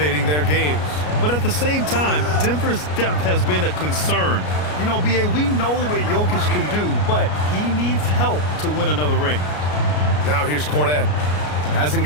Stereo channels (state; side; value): late; right; 33 ms